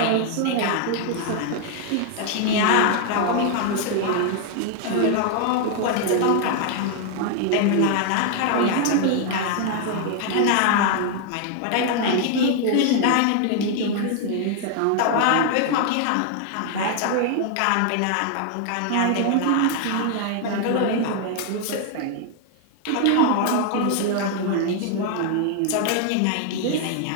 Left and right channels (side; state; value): both; different; correlation 0.00